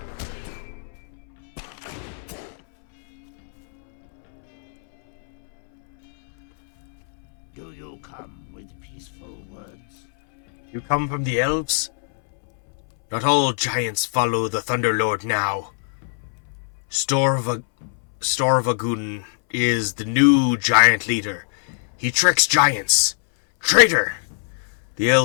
Do you come with peaceful words? You come from the elves? Not all giants follow the Thunderlord now. Storvagun is the new giant leader. He tricks giants. Traitor! The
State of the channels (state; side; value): silent; right; 63 dB below the other